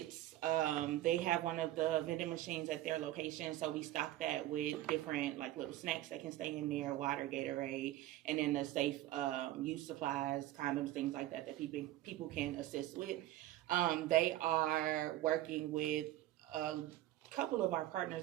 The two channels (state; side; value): quieter; left; 14.7 dB